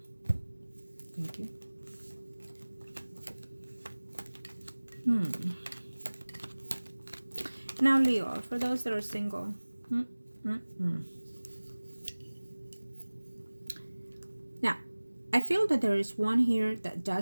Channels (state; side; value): inverted; both; correlation -1.00